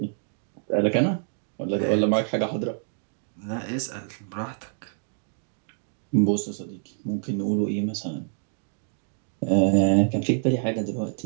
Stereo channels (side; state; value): left; silent; digital silence